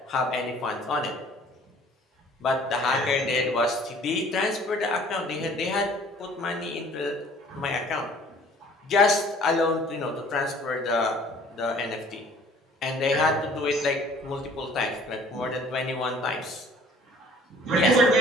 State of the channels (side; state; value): both; normal; correlation 0.53